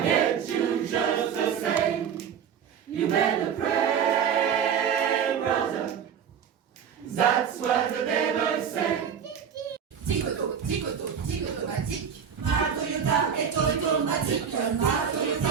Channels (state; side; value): quieter; left; 7.7 dB